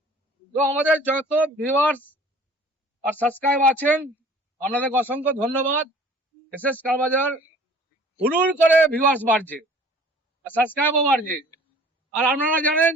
তো আমাদের যত ভিউয়ার্স আর সাবস্ক্রাইব আছেন, আপনাদের অসংখ্য ধন্যবাদ। এসএস কার বাজার হুড়ুর করে ভিউয়ার্স বাড়ছে আর সাবস্ক্রাইবও বাড়ছে। আর আপনারা জানেন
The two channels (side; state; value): both; normal; correlation 0.50